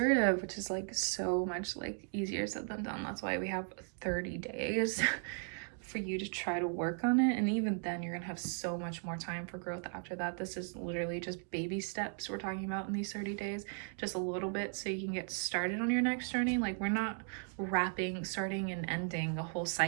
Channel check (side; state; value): left; silent; 53 dB below the other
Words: which is like so much like easier said than done. That's why we have 30 days for you to try to work on it, and even then you're gonna have so much more time for growth after that. This is literally just baby steps we're talking about in these 30 days, just a little bit so you can get started on your next journey. Like, we're not starting and ending a whole